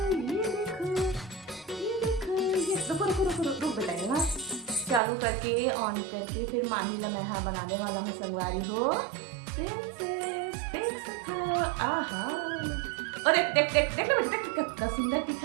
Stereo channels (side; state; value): left; drops out; at 5.0 s